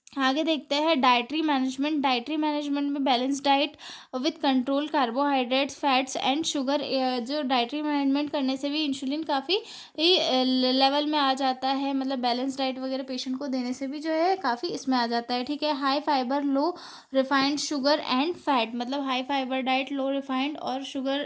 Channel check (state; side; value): identical; both; correlation 1.00